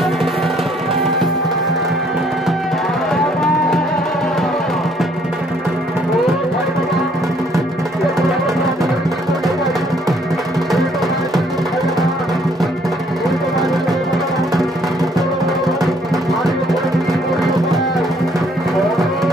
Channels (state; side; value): normal; both; correlation 0.64